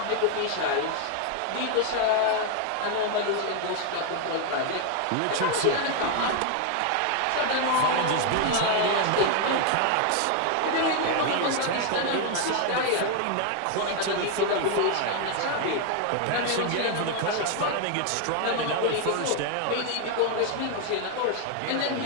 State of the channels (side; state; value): both; different; correlation 0.00